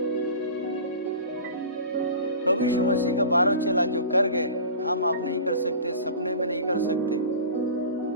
प्रभु यीशु मसीह का 12 चेला जो कर गए, हम आप नहीं कर सकते, सपने में नहीं कर सकते।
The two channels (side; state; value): both; inverted; correlation -0.36